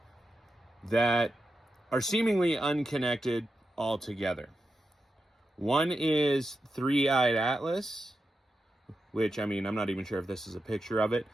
that are seemingly unconnected altogether. One is Three-Eyed Atlas, which, I mean, I'm not even sure if this is a picture of it,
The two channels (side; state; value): both; normal; correlation 0.89